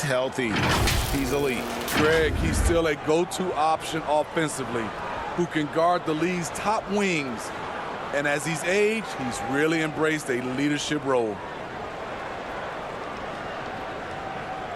healthy, he's elite. Greg, he's still a go-to option offensively who can guard the league's top wings. And as he's aged, he's really embraced a leadership role.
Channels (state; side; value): identical; both; correlation 1.00